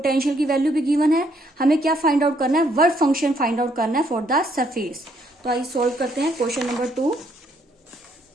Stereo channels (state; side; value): normal; both; correlation 0.70